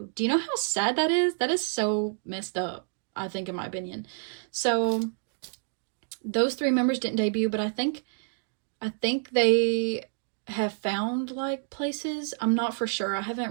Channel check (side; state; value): left; silent; digital silence